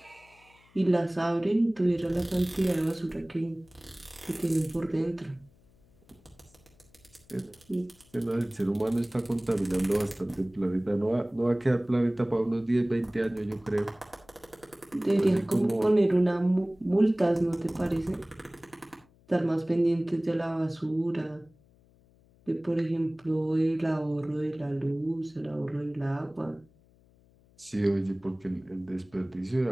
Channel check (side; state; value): left; noise; hum, 30 dB below the sound